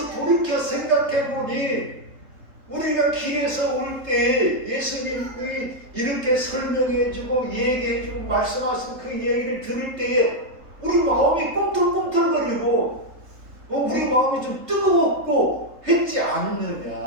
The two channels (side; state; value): left; late; 3.7 ms